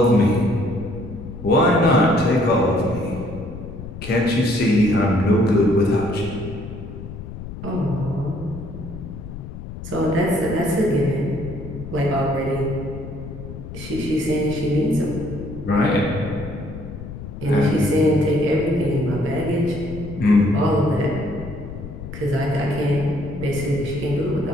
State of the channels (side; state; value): left; noise; rumble, 11 dB below the sound